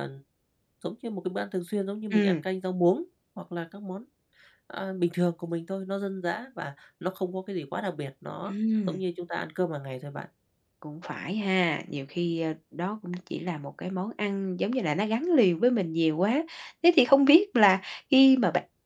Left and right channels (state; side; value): identical; both; correlation 1.00